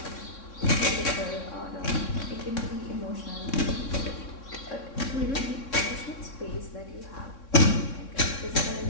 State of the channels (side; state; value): right; late; 3.6 ms